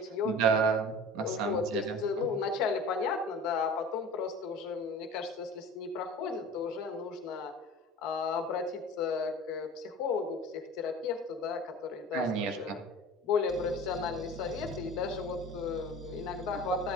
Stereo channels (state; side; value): normal; both; correlation 0.39